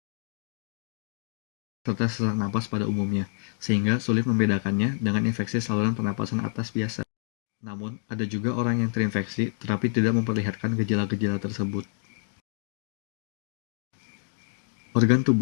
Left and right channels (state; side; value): silent; right; digital silence